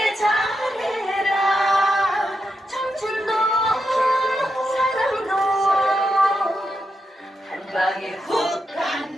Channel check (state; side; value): normal; both; correlation 0.85